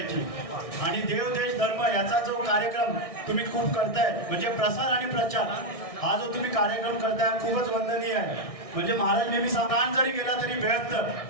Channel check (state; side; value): late; right; 1.6 ms